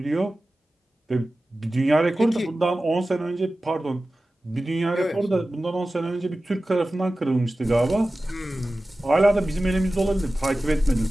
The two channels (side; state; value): both; normal; correlation 0.95